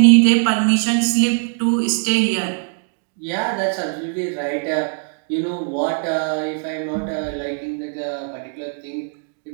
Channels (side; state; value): left; silent; 56 dB below the other